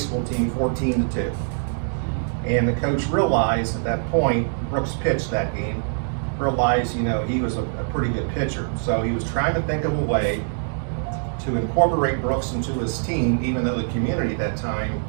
team 14-2. And the coach realized at that point, Brooks pitched that game, realized, he was a pretty good pitcher. So he was trying to think of a way to incorporate Brooks into his team, even though the community at that time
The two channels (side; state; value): left; silent; digital silence